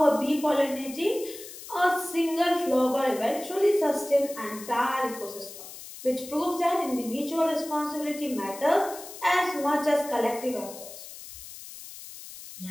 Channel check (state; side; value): noise; left; hiss, 14 dB below the sound